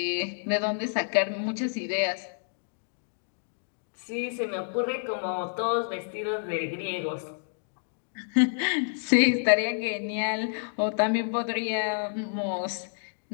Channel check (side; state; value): right; silent; digital silence